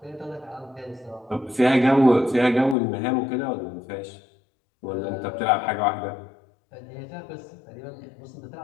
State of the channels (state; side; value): drops out; right; at 2.8 s